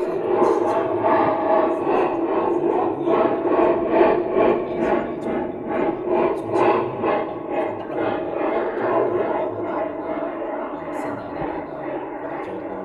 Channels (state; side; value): identical; both; correlation 1.00